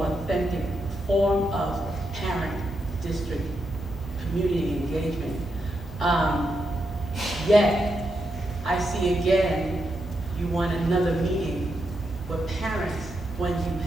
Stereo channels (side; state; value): both; normal; correlation 0.83